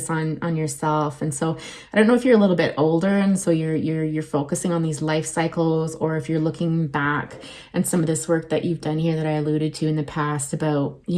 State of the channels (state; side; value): identical; both; correlation 1.00